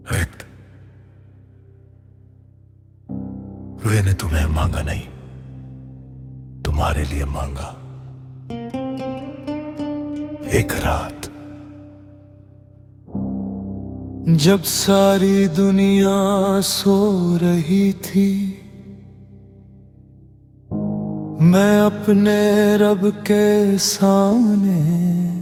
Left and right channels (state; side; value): identical; both; correlation 1.00